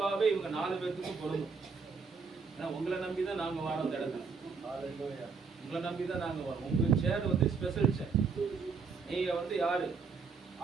இவங்க 4 பேருக்கு பொருந்தும். ஏன்னா உங்களை நம்பிதான் நாங்க வரோம். அந்த இடத்துல உங்களை நம்பிதான் நாங்க வரோம். உங்க சேர் வந்து ஸ்பெஷல் சேர். நீங்க வந்து யாரு?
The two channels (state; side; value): quieter; left; 5.2 dB